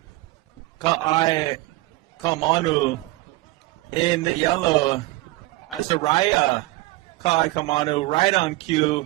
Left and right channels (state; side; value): quieter; left; 20.2 dB